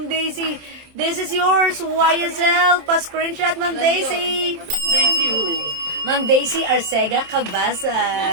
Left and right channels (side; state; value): left; late; 27 ms